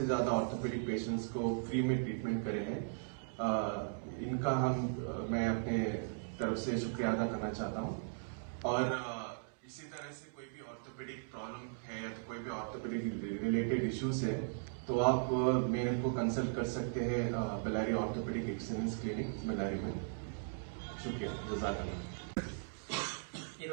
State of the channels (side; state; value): left; silent; digital silence